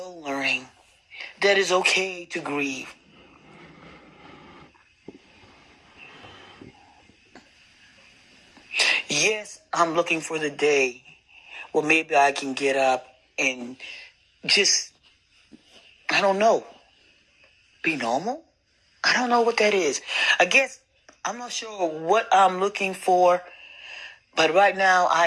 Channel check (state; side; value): identical; both; correlation 1.00